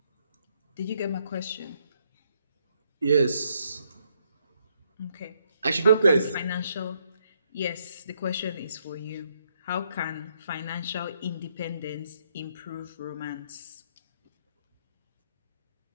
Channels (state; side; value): inverted; both; correlation -0.74